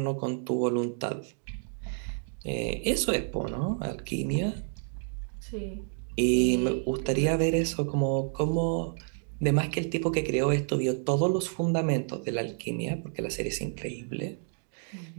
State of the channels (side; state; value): left; silent; 58 dB below the other